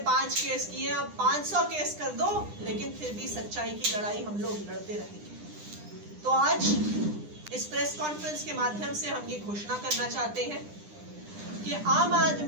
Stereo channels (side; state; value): left; late; 9.9 ms